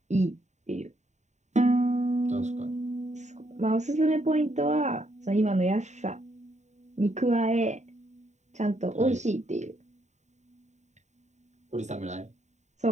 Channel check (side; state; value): left; late; 0.34 ms